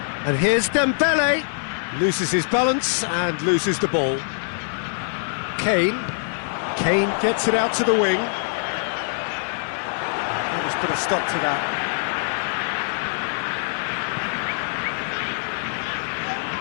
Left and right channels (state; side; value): silent; right; 63 dB below the other